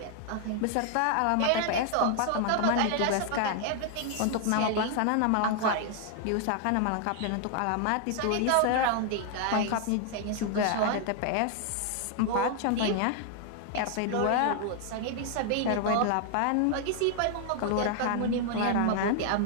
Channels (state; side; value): different; both; correlation 0.00